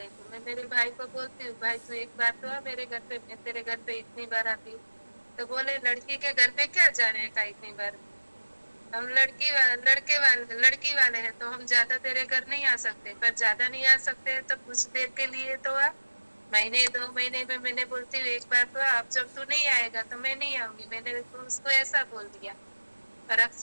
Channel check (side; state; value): both; inverted; correlation -1.00